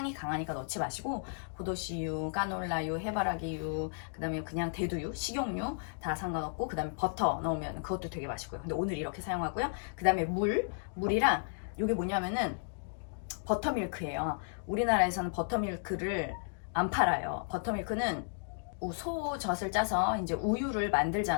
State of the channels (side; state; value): right; silent; digital silence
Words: 강하니까 넣지 마시고, 포도씨유, 까놀라유, 해바라기유, 그 다음에 그냥 대두유, 식용유 다 상관없고, 그 다음에 버터 넣으면 그것도 되게 맛있고요. 근데 오늘 이렇게 사용하고요. 그 다음에 물이랑, 이게 뭐냐면은 버터밀크예요. 우리나라에서는 버터밀크를 안 팔아요. 버터밀크는 소젖을 짜서 이제 우유를